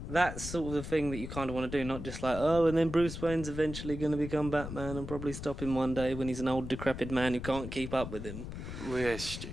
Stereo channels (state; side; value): noise; left; rumble, 8 dB below the sound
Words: that's sort of the thing that you kind of want to do, not just like, oh, and then Bruce Wayne's eventually going to become Batman and probably stop him one day when he's an old decrepit man who can't keep up with him. We're